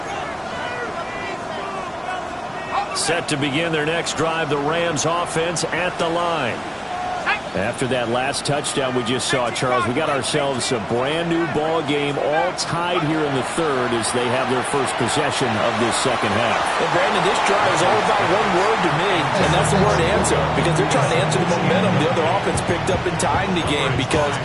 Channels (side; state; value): both; identical; correlation 1.00